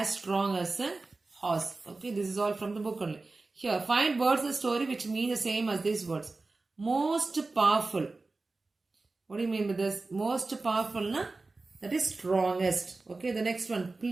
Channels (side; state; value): left; quieter; 3.5 dB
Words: strong as a horse. Okay, this is all from the book only. Here, find words in the story which mean the same as these words. Most powerful. What do you mean by this? Most powerful na? That is strongest. Okay, the next one,